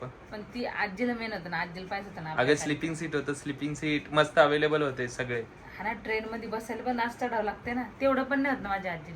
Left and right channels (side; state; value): both; identical; correlation 1.00